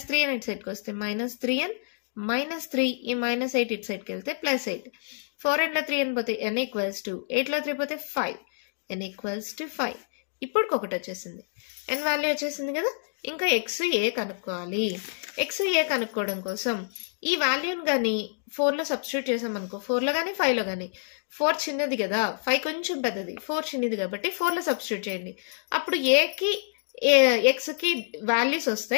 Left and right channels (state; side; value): silent; right; digital silence